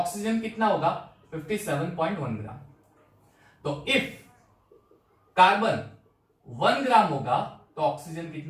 कितना होगा? 57.1 ग्राम। तो इफ कार्बन 1 ग्राम होगा तो ऑक्सीजन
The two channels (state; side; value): identical; both; correlation 1.00